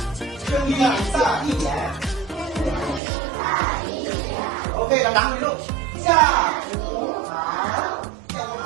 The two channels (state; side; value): drops out; left; at 3.0 s